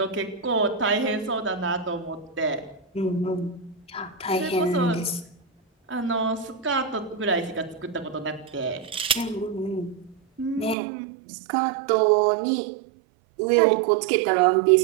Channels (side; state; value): left; drops out; at 10.8 s